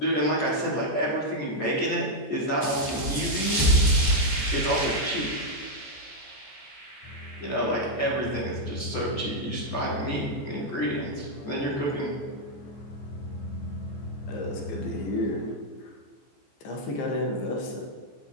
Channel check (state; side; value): late; right; 14 ms